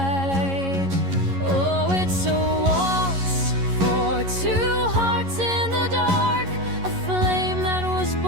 Oh, it's a waltz for two hearts in the dark, a flame that was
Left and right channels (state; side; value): late; left; 11 ms